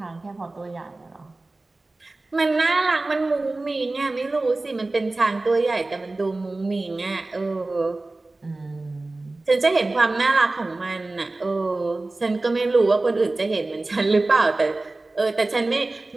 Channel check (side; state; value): left; quieter; 3.1 dB